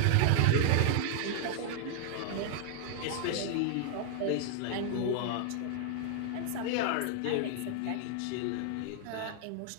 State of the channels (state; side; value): different; both; correlation 0.00